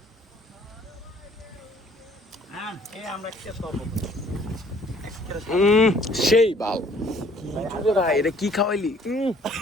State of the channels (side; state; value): both; normal; correlation 0.58